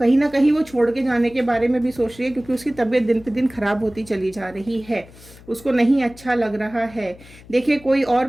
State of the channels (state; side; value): noise; left; hum, 22 dB below the sound